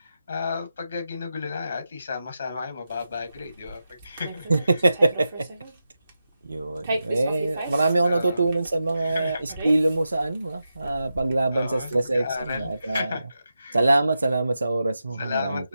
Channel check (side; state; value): both; inverted; correlation -0.89